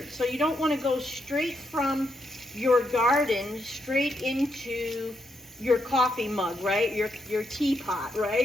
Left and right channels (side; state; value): both; normal; correlation 0.80